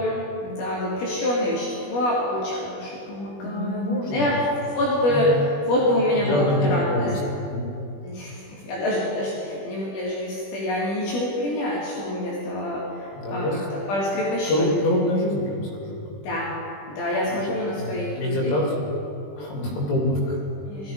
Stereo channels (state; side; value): late; right; 20 ms